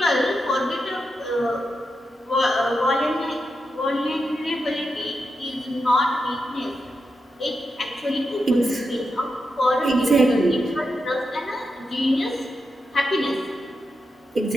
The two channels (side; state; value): both; normal; correlation 0.87